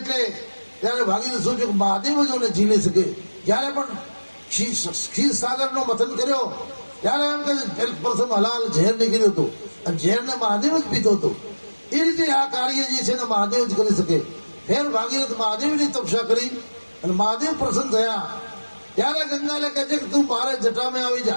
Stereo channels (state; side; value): inverted; both; correlation -1.00